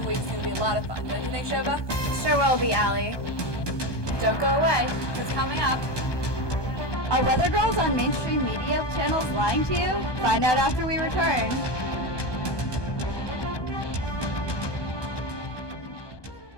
Week's going to be a lot of fun, don't you think, Shobha? Sure will be, Allie. Don't go away. It's coming up. Are weather girls on mainstream media channels lying to you? Find out after we return.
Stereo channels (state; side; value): late; right; 1.2 ms